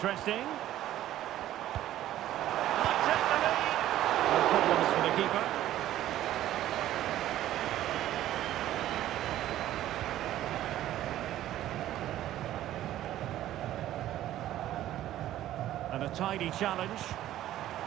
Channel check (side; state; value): left; quieter; 13.3 dB